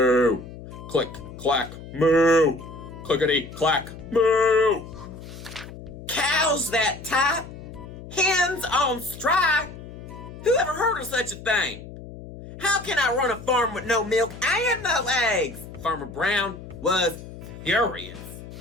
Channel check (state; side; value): noise; left; hum, 14 dB below the sound